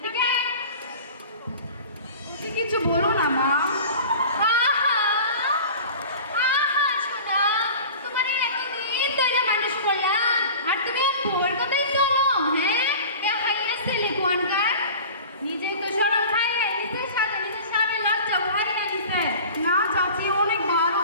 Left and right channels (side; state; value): both; inverted; correlation -0.39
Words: আয়। তুই কিছু বলো না মা। আহা, আহা, সোনা, তোমার এই এতদিন ধরে মানুষ করলাম, আর তুমি ওর কথাই চলো, হ্যাঁ? এ হাইয়া ছেলে কোয়ানকার, নিজে তো শরম খাইয়ে, নিজের সাথে নিজের সামনে লজ্জা করে না দিছে। না চাচি, অনেক ভালো